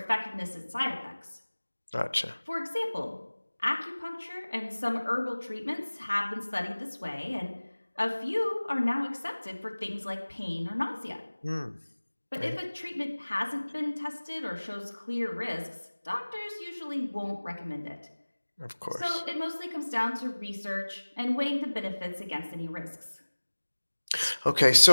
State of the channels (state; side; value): inverted; both; correlation -1.00